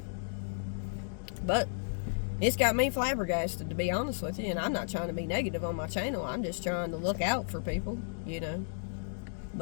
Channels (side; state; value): right; silent; digital silence